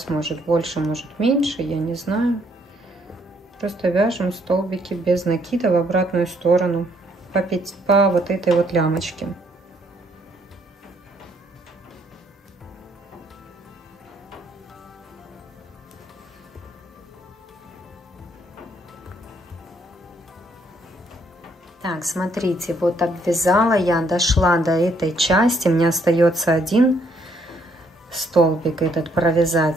может больше, может меньше, я не знаю. Просто вяжем столбики без накида в обратную сторону по вот этой вот лямочке. Так, смотрите, вот обвязала я, дошла до этой части, мне остается один столбик этот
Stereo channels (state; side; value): normal; both; correlation 0.69